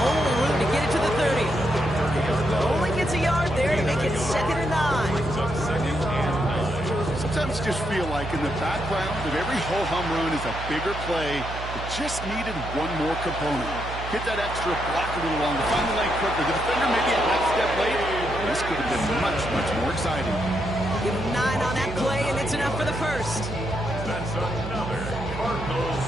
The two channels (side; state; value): right; noise; hum, 9 dB below the sound